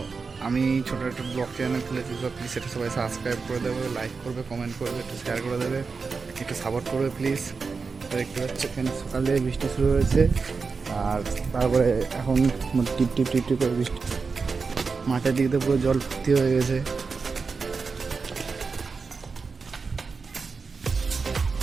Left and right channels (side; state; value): left; quieter; 4.8 dB